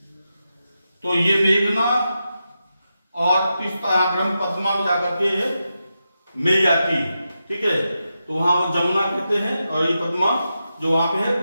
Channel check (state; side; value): inverted; both; correlation -0.88